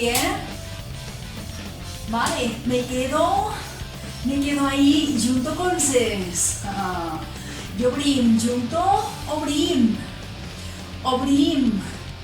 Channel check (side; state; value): both; identical; correlation 1.00